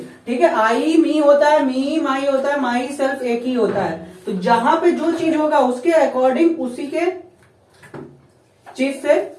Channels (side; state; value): both; identical; correlation 1.00